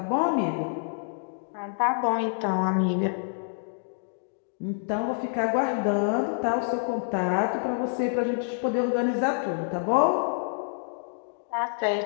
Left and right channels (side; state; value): right; silent; digital silence